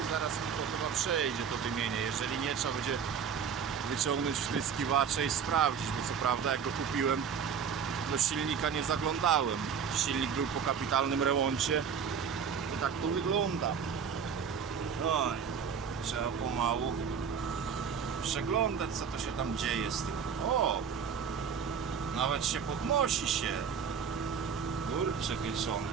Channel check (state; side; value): quieter; left; 6.8 dB